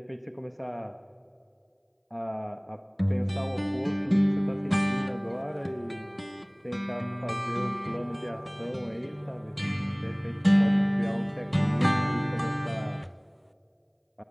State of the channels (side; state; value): both; identical; correlation 1.00